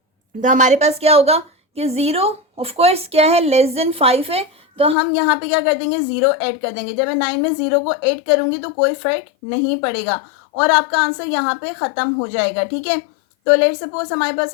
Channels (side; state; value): right; drops out; at 5.0 s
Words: तो हमारे पास क्या होगा कि 0 ऑफकोर्स क्या है, लेस देन 5 है, तो हम यहाँ पे क्या कर देंगे, 0 ऐड कर देंगे. जब मैं 9 में 0 को ऐड करूँगी तो कोई फर्क नहीं पड़ेगा और आपका आंसर यहाँ पे ख़त्म हो जाएगा. ठीक है, तो लेट सपोज हमारे